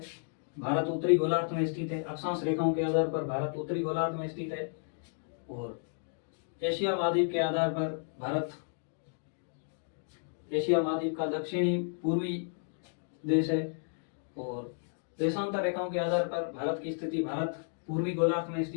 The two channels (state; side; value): silent; right; digital silence